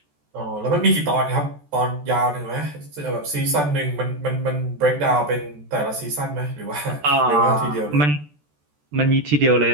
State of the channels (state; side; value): late; left; 14 ms